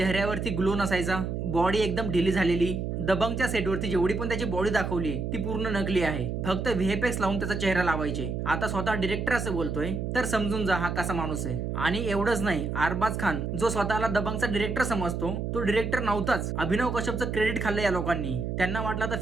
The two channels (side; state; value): right; noise; hum, 3 dB below the sound